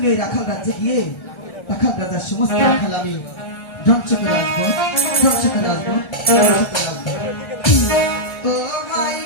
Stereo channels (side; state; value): right; late; 1.3 ms